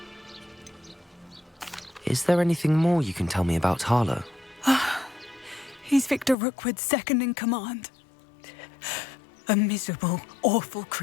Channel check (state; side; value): drops out; right; at 6.4 s